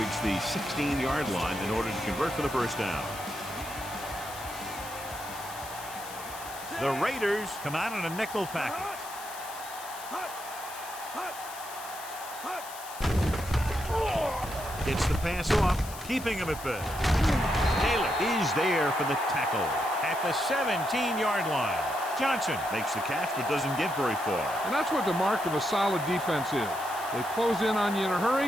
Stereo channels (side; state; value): left; noise; hiss, 13 dB below the sound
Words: the 16-yard line in order to convert for the first down. The Raiders come out in a nickel package. Gets the pass off, keeping him at bay. Taylor is there for the tackle at the 17-yard line. Johnson makes the catch but doesn't get very far. And that's what the mark of a solid defense is. They close in on you in a